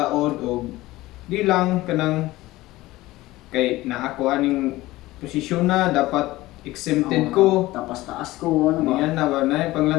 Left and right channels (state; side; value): quieter; right; 18.1 dB